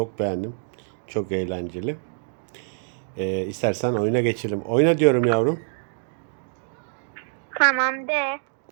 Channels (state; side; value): silent; left; digital silence